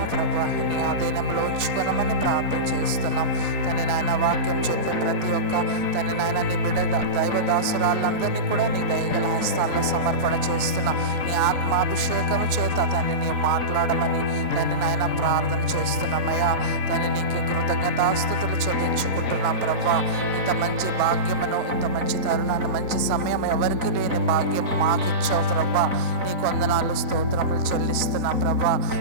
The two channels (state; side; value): late; left; 3.9 ms